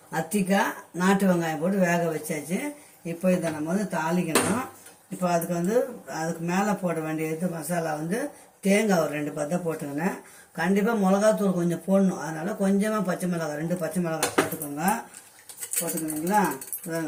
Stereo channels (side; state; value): both; identical; correlation 1.00